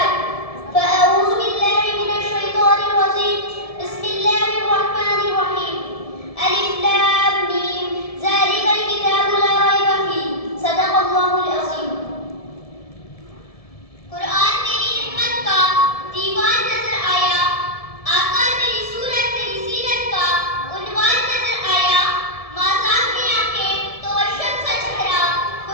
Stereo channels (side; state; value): right; late; 1.7 ms